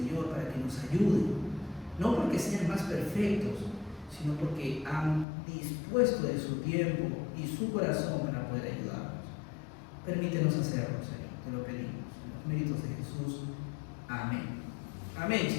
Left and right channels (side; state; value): right; drops out; at 5.2 s